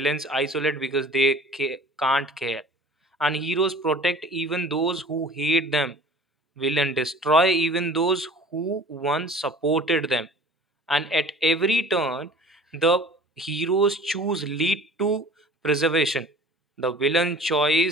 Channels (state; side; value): normal; both; correlation 0.44